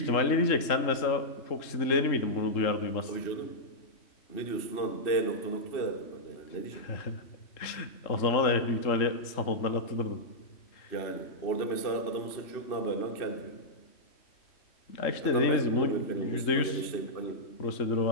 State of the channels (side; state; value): right; late; 3.7 ms